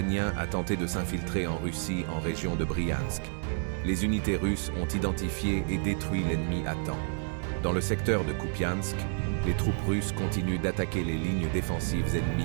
a tenté de s'infiltrer en Russie en région de Bryansk. Les unités russes ont identifié et détruit l'ennemi à temps. Dans le secteur de Kupiansk, les troupes russes continuent d'attaquer les lignes défensives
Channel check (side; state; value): left; silent; digital silence